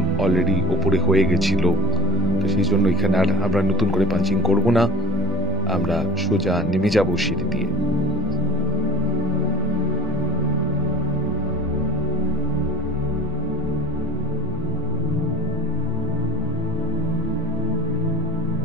অলরেডি ওপরে হয়ে গেছিল, তো সেই জন্য এখানে আর আমরা নতুন করে পাঞ্চিং করব না, আমরা সোজা নেমে যাব সিঁড়ি দিয়ে।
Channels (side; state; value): both; normal; correlation 0.30